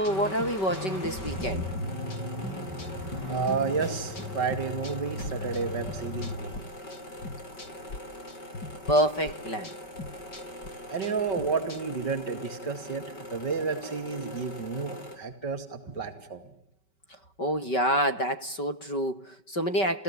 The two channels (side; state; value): right; late; 5.2 ms